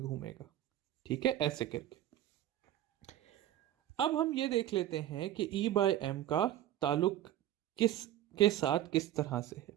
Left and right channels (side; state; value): left; quieter; 12.5 dB